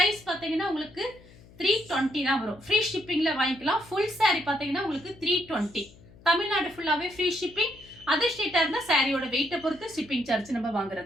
பார்த்தீங்கன்னா உங்களுக்கு 320 தான் வரும். ஃப்ரீ ஷிப்பிங்ல வாங்கிக்கலாம். ஃபுல் saree பார்த்தீங்கன்னா உங்களுக்கு 320. தமிழ்நாடு ஃபுல்லாவே ஃப்ரீ ஷிப்பிங். அதர் ஸ்டேட்டா இருந்தா சாரியோட வெயிட்டை பொறுத்து ஷிப்பிங் சார்ஜ் நம்ம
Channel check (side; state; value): left; noise; hum, 23 dB below the sound